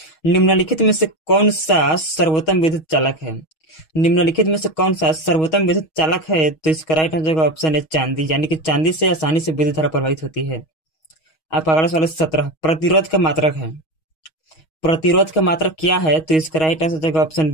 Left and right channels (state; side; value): late; right; 6.3 ms